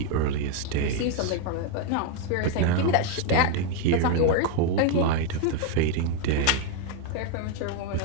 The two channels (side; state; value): both; different; correlation 0.01